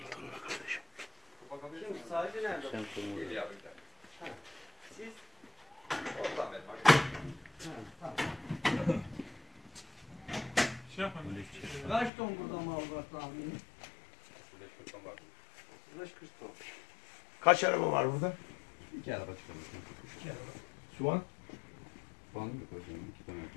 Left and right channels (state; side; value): drops out; right; at 12.1 s